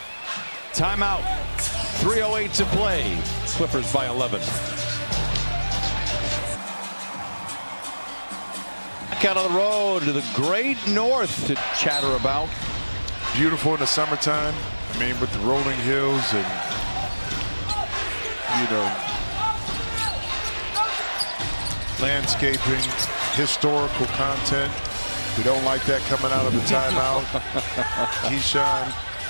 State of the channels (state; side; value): inverted; both; correlation -1.00